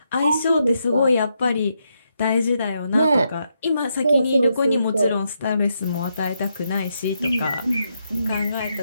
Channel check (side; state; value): both; inverted; correlation -0.81